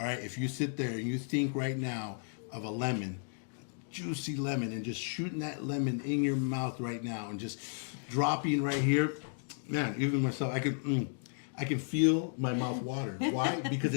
right, if you sit there and you think right now of a lemon, juicy lemon, and just shooting that lemon in your mouth right now and just dropping right here, man, even myself, I can feel my mouth water. Why? Because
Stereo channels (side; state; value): right; silent; digital silence